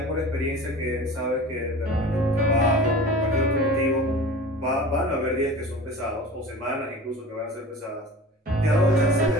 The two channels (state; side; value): normal; both; correlation 0.38